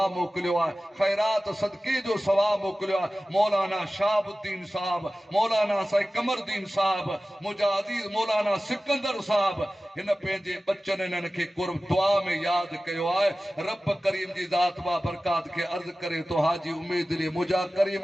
मोकिलियो आहे ख़ैरात सदके जो सवाब मोकिलियो आहे मौलाना शाहबुद्दीन साहब मौलाना साईं कमरदीन साहब मुजाहिदी मौलाना सिकंदर साहब हिन पंहिंजे बच्चन इन्हनि खे कुर्ब दुआ में यादि कयो आहे रब करीम जी ज़ात बा बरकात खे अर्ज़ करे तो हाजी उम्मीद अली मुंहिंजा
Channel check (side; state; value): both; normal; correlation 0.96